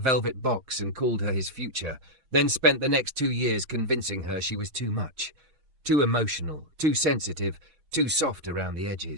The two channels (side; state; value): left; late; 6.3 ms